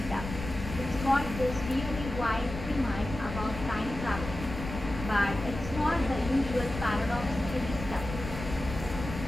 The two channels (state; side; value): noise; left; rumble, 8 dB below the sound